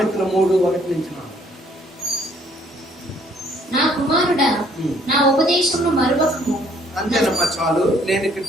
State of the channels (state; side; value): normal; both; correlation 0.63